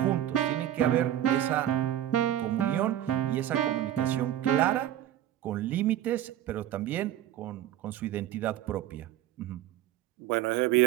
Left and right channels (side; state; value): left; quieter; 12.3 dB